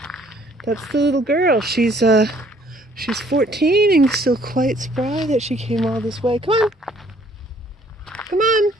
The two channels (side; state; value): both; normal; correlation 0.61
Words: That's the little girl. She's 14 and still quite spry that she came all this way. Come on. Come on.